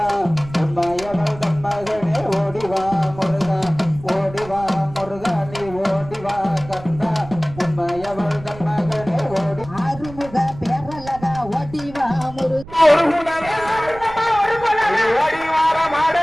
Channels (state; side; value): noise; right; rumble, 16 dB below the sound